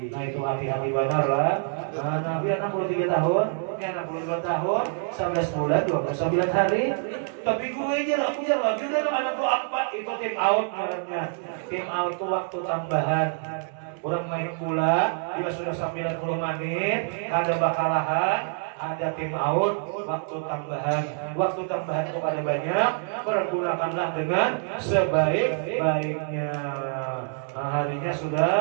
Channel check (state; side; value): silent; left; 60 dB below the other